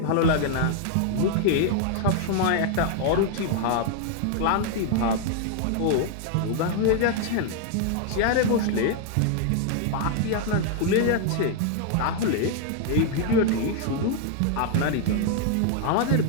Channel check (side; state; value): both; different; correlation 0.00